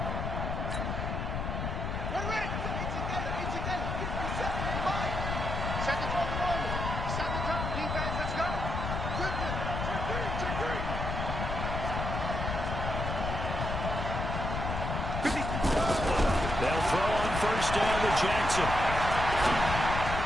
They'll throw on first down to Jackson.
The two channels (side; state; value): left; noise; rumble, 3 dB below the sound